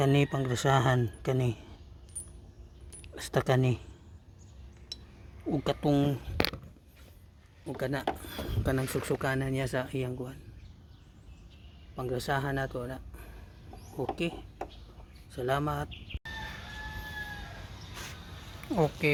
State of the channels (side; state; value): both; identical; correlation 1.00